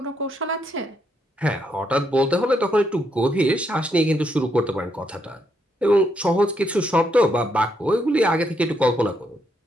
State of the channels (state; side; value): normal; both; correlation 0.77